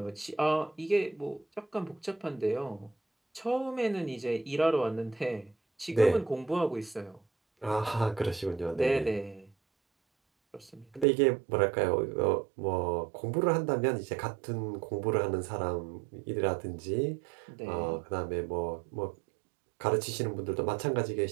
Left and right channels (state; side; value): drops out; left; at 11.1 s